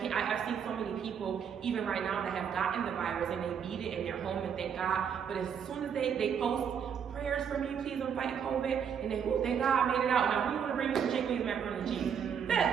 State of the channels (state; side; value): quieter; left; 7.6 dB